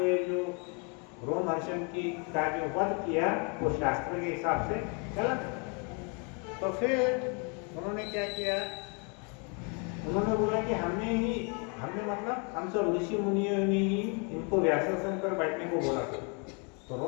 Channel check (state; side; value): quieter; right; 35.6 dB